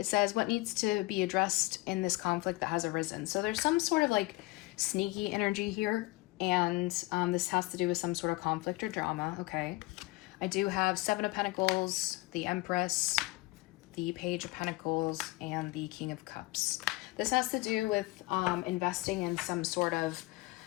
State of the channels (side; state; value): right; quieter; 21.7 dB